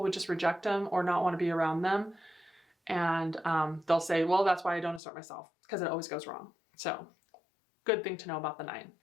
would just reject them or not want to be around them. And they'll say, well, that's why I don't assert myself, because it always goes wrong. So good thing to know about the 9.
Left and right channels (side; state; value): right; drops out; at 5.0 s